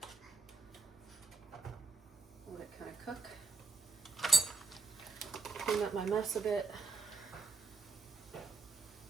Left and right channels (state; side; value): quieter; left; 3.9 dB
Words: Let it kind of cook. Clean up my mess a bit.